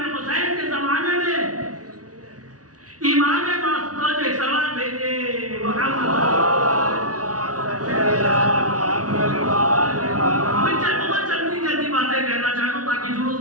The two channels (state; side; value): late; left; 0.68 ms